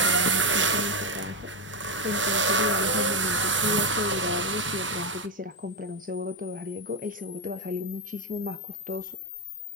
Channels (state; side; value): normal; both; correlation 0.07